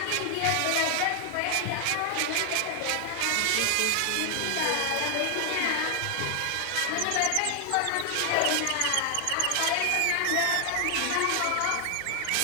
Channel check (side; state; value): both; different; correlation 0.00